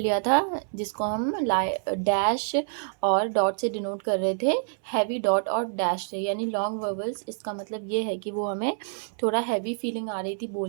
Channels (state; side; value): silent; left; 58 dB below the other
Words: था, जिसको हम डैश और डॉट से डिनोट कर रहे थे, हैवी डॉट और डैश से। यानी लॉन्ग वोवेल्स, इसका मतलब ये है कि वो हमें थोड़ा हैवी फीलिंग आ रही थी